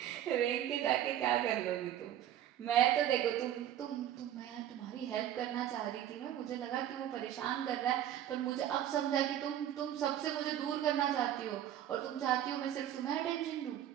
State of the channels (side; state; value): left; quieter; 11.2 dB